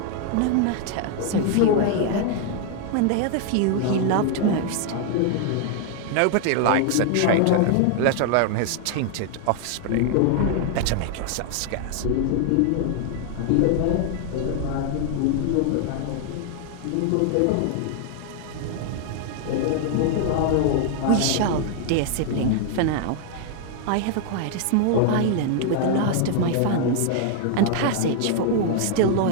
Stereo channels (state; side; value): different; both; correlation 0.00